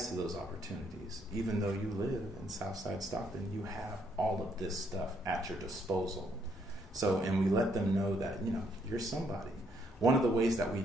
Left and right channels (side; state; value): both; normal; correlation 0.72